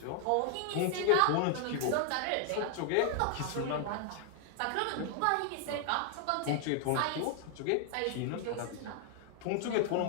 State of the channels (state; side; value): different; both; correlation 0.00